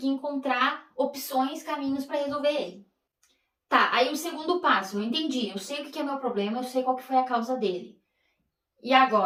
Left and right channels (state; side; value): identical; both; correlation 1.00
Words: encontrar opções, caminhos para resolver ele. Tá, aí o segundo passo, eu entendi, eu sei o que é meu problema, eu sei qual que foi a causa dele. E